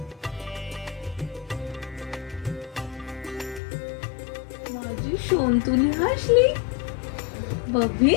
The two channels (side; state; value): right; drops out; at 3.6 s